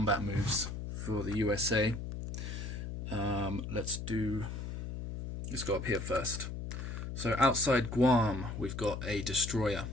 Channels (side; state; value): left; noise; hum, 6 dB below the sound